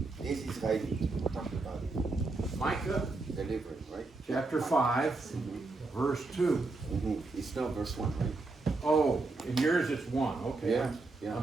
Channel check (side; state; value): left; quieter; 3.4 dB